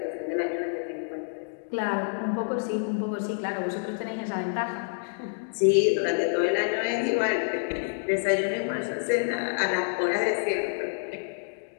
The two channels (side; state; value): right; silent; digital silence